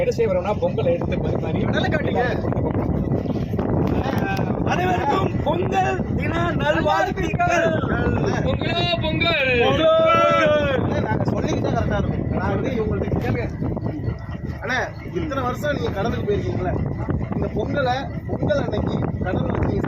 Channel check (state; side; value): identical; both; correlation 1.00